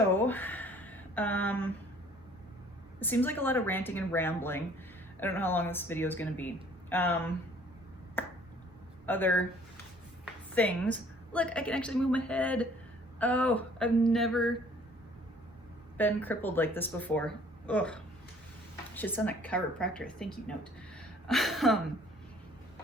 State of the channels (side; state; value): both; normal; correlation 0.56